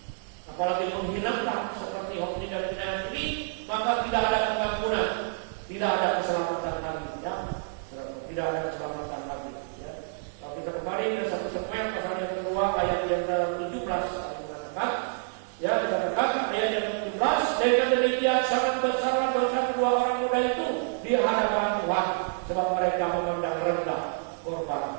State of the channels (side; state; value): left; silent; digital silence